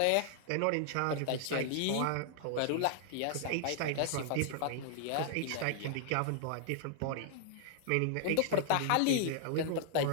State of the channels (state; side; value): different; both; correlation -0.01